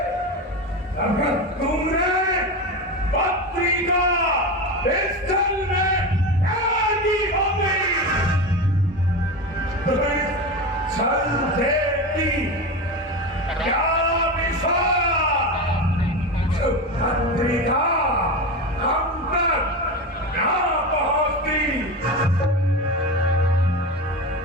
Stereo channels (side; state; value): both; normal; correlation 0.22